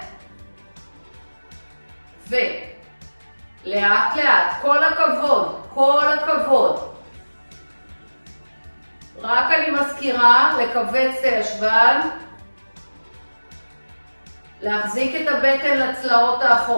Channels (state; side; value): inverted; both; correlation -1.00